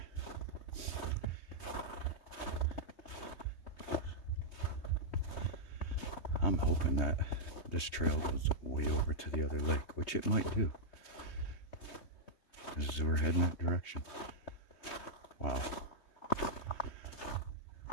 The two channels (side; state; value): right; late; 3.2 ms